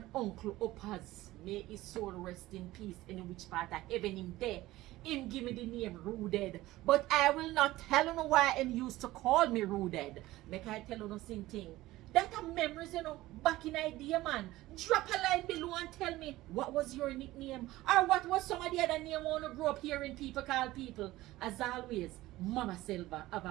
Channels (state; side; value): quieter; left; 17.2 dB